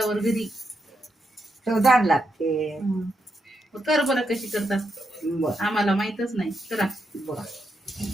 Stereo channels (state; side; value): normal; both; correlation 0.82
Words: घरी. चवदार लागते. कर बरं कशी करतात. बर आम्हाला माहितच नाही. करा. बर